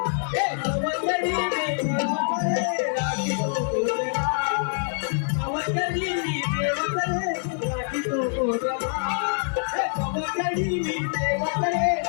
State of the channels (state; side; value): silent; right; 58 dB below the other